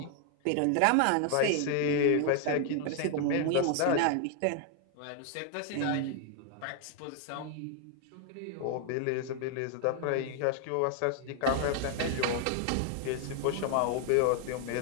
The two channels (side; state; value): both; different; correlation 0.00